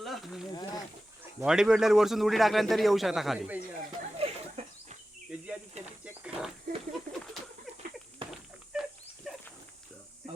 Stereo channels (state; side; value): normal; both; correlation 0.94